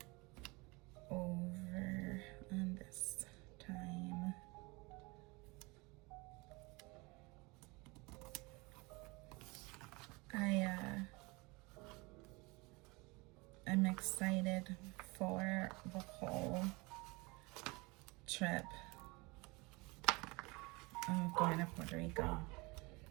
over on this time. I'm excited for the whole trip of going to Puerto Rico.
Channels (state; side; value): quieter; left; 25.7 dB